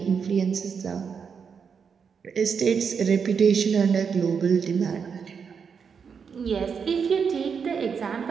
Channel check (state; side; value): quieter; left; 6.3 dB